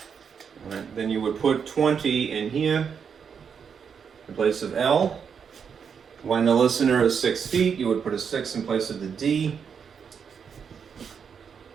right, then you would put 20 in here in place of L. When the listener is 6 feet, you would put a 6 in place of the D.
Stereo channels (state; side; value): quieter; left; 6.8 dB